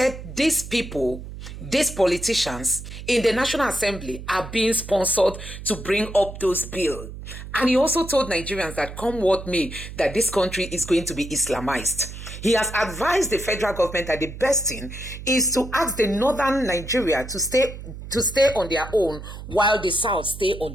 these people, these politicians in the National Assembly are being sponsored to bring up those bills. And he also told Nigerians that come what may, that this country is going to be Islamized. He has advised the federal government that the best thing is to ask the northern Nigeria to stay on their own while the south stay on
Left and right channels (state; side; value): noise; right; hum, 11 dB below the sound